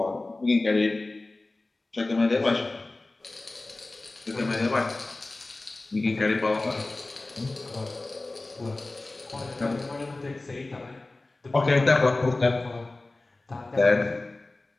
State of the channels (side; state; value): right; quieter; 3.0 dB